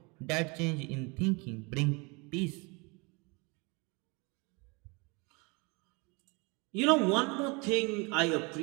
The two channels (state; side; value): quieter; left; 29.0 dB